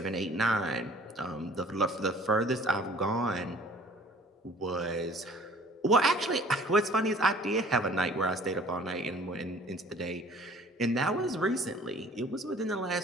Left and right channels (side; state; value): both; normal; correlation 0.52